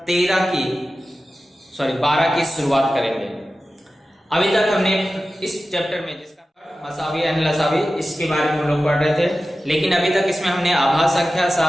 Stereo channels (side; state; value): both; normal; correlation 0.94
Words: 12 की शुरुआत करेंगे। अभी तक हमने इस चैप्टर में जिसका मसावी एंड लसावी इसके बारे में हम लोग पढ़ रहे थे, लेकिन अभी तक इसमें हमने आभाज्य संख्या,